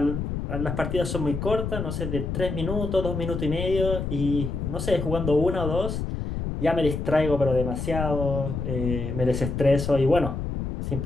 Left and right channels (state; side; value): noise; left; rumble, 3 dB below the sound